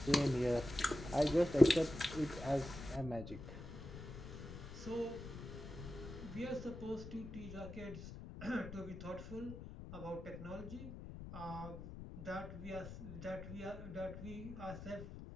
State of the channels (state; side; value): noise; left; rumble, 10 dB below the sound